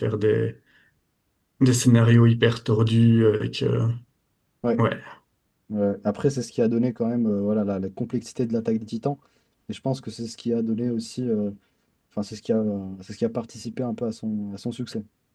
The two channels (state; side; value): identical; both; correlation 1.00